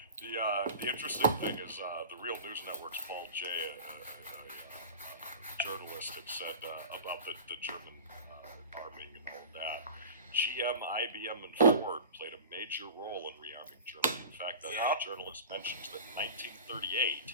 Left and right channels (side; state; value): both; inverted; correlation -0.34